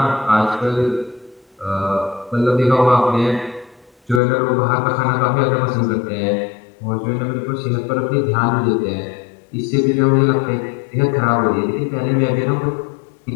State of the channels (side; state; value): right; drops out; at 4.2 s